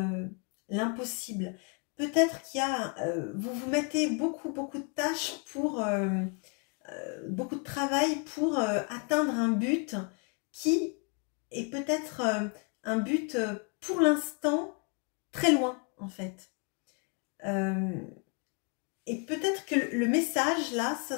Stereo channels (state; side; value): quieter; right; 35.2 dB